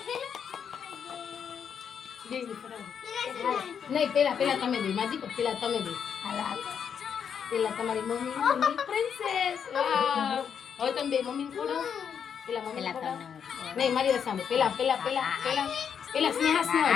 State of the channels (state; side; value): quieter; right; 7.5 dB